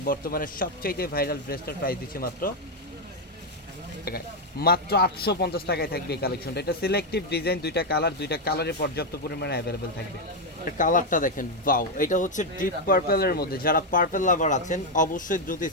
বর্তমানে সবচাইতে ভাইরাল ড্রেসটার প্রাইস দিচ্ছি মাত্র 850 টাকায় থাকবে এই কালেকশনটা। এটা সিলেক্টিভ ডিজাইন, দুইটা কালারে পর্যাপ্ত পরিমাণে অ্যাভেলেবেল থাকবে। কালারটা দেখেন, ওয়াও! এটা হচ্ছে ডিপ পার্পলের মধ্যে। যারা পার্পল লাভার আছেন অবশ্যই দ্রুত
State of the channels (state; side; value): normal; both; correlation 0.03